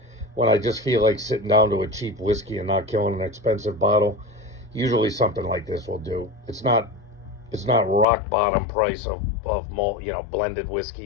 when I just feel like sitting down to a cheap whiskey and not killing an expensive bottle, usually something like this will do. It's not rock bottom price of malt, blended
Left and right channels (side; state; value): right; drops out; at 8.1 s